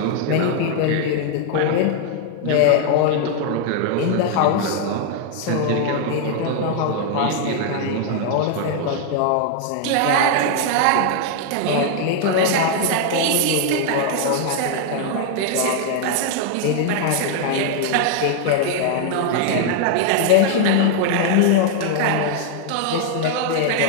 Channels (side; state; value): both; different; correlation 0.00